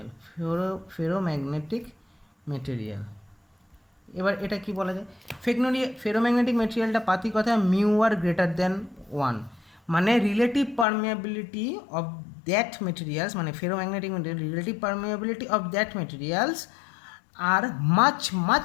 এবার এটা কি বলা যায়, ফেরোম্যাগনেটিক মেটেরিয়ালটা পাতি কথা মিউ আর গ্রেটার দেন 1, মানে relative permeability of that materials, মানে ferromagnetic material relative permeability of that materials are much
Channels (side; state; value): right; drops out; at 10.9 s